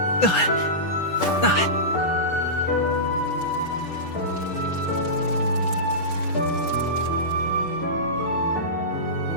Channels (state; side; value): late; right; 6.4 ms